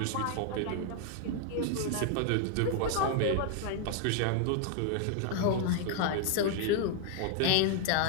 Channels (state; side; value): different; both; correlation 0.00